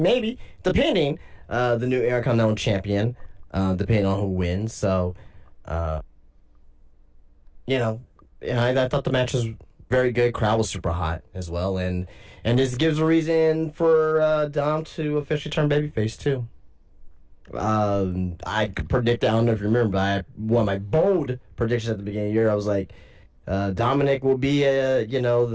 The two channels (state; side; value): identical; both; correlation 1.00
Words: depending, the new Intercontinental champion, depending on who wins. So, I thought the match was very good. Crowd was super hot as well, and this gives a reason for Dom to officially turn babyface too. I could predict. I don't know if you remember, but one of my bold predictions at the beginning of the year, I was like, Dominic will be